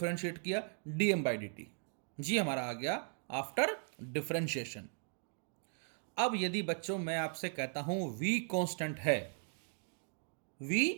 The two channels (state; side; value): silent; left; 53 dB below the other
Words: किया dm by dt। जी हमारा आ गया आफ्टर डिफरेंशिएशन। अब यदि बच्चों मैं आपसे कहता हूं v कांस्टेंट है, v